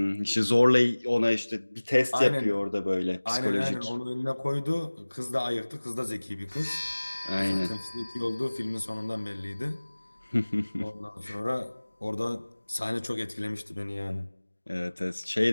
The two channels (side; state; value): both; inverted; correlation -1.00